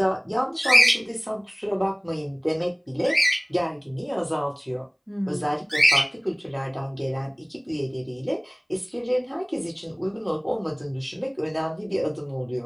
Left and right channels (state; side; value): identical; both; correlation 1.00